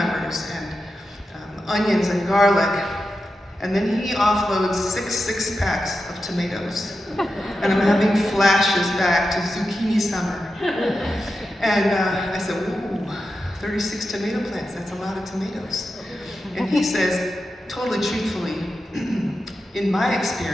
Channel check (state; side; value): normal; both; correlation 0.90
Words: and onions and garlic. And then he offloads 6 packs of tomatoes. And I'm having flashes back to zucchini summer. And I said, ooh, 36 tomato plants, that's a lot of tomatoes. And he says, totally truthfully, in my